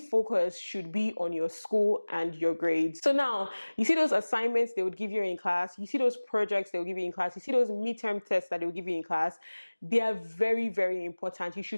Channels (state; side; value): inverted; both; correlation -1.00